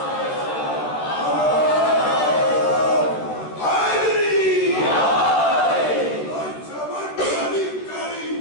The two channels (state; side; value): late; right; 13 ms